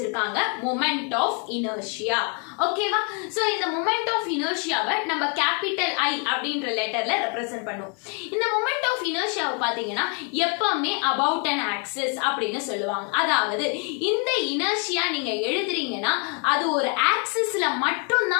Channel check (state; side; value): quieter; right; 36.7 dB